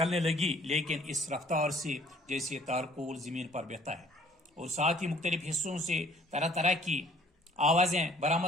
लगी, लेकिन इस रफ्तार से जैसे तारकोल जमीन पर बहता है, और साथ ही मुख्तलिफ हिस्सों से तरह तरह की आवाजें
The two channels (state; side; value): normal; both; correlation 0.57